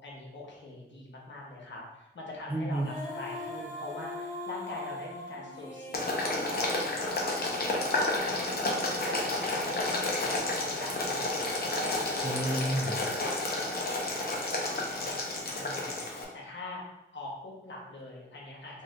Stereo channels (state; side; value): normal; both; correlation 0.20